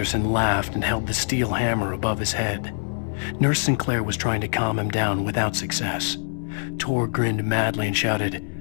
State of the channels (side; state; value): right; silent; digital silence